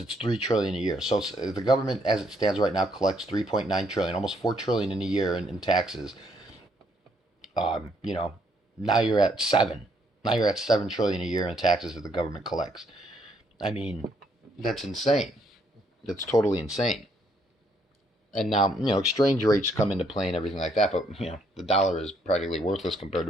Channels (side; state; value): both; normal; correlation 0.71